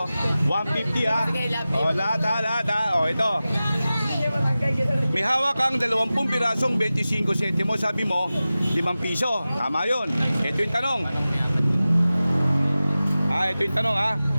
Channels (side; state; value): both; inverted; correlation -0.96